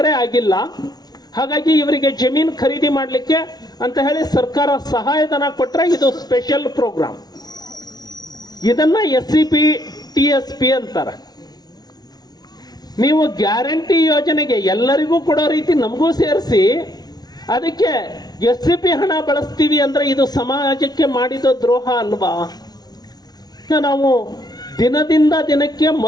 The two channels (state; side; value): late; right; 0.19 ms